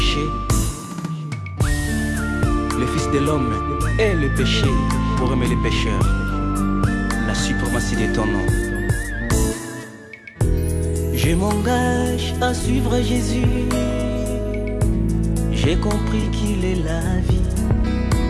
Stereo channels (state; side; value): identical; both; correlation 1.00